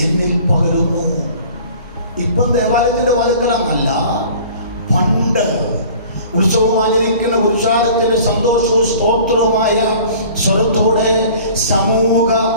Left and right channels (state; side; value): inverted; both; correlation -0.47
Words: എന്നിൽ പകരുന്നു. ഇപ്പം ദേവാലയത്തിന്റെ വാതിൽക്കലാന്നല്ല, പണ്ട് ഉത്സവം ആചരിക്കുന്ന പുരുഷാരത്തിന്റെ സന്തോഷവും സ്തോത്രവുമായ സ്വരത്തോടെ സമൂഹ